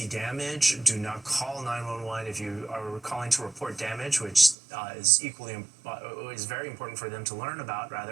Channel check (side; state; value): left; drops out; at 4.5 s